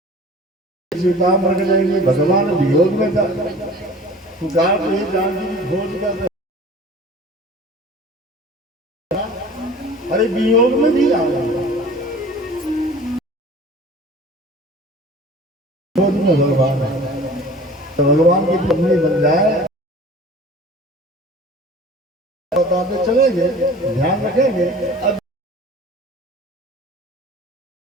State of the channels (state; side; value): normal; both; correlation 0.43